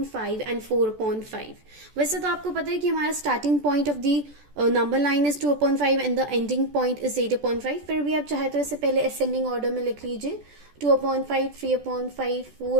5 and 4 upon 5. वैसे तो आपको पता है कि हमारा starting point of the number line is 2 upon 5 and the ending point is 8 upon 5. फिर भी आप चाहे तो इसे पहले ascending order में लिख लीजिए. 2 upon 5, 3 upon 5,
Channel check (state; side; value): late; left; 14 ms